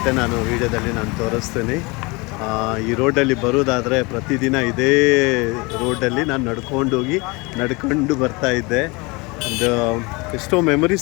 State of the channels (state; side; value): quieter; right; 26.3 dB